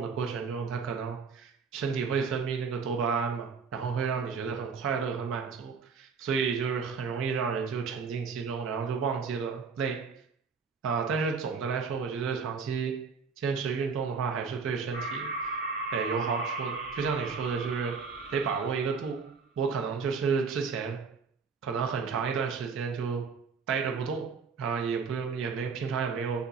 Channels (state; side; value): quieter; left; 5.3 dB